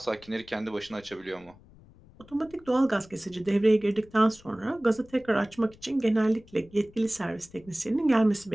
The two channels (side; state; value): left; noise; rumble, 25 dB below the sound